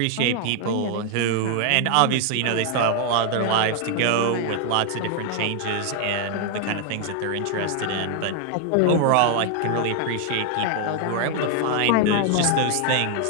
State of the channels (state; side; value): different; both; correlation 0.00